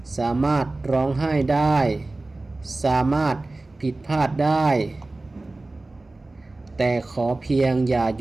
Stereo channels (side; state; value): left; quieter; 3.0 dB